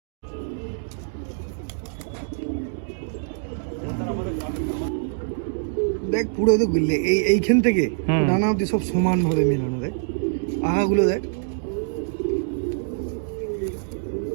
দেখ পুরো তো এইখান থেকে ডানা অব্দি সব সমান ভাবে মেলানো, দেখ আগাগুলো দেখ।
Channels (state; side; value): silent; left; digital silence